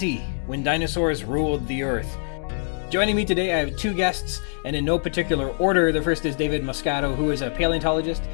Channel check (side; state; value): right; silent; digital silence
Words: When Dinosaurs Ruled the Earth. Joining me today, I have two guests, and in no particular order. The first is David Moscato, who is a paleontologist